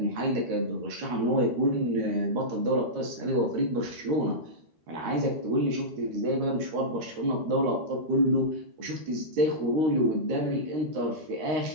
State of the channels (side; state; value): left; late; 13 ms